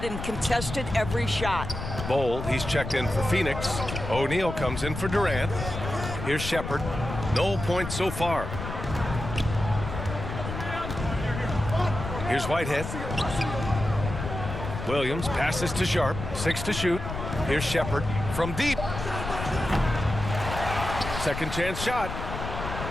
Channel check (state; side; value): noise; left; rumble, 7 dB below the sound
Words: and contested every shot. Bol, he's checked in for Phoenix. O'Neal comes in for Durant. Here's Shepard. No points so far. Here's Whitehead. Williams passes to Sharp. 6 to shoot. Here's Shepard from deep. Second chance shot.